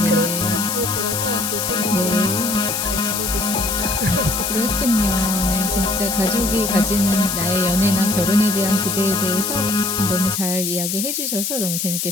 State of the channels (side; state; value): left; noise; hiss, 2 dB below the sound